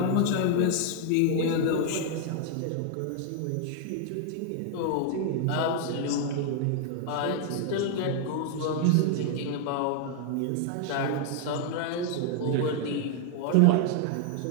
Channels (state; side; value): different; both; correlation 0.00